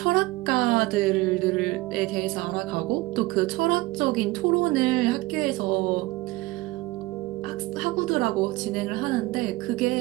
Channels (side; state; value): left; quieter; 20.4 dB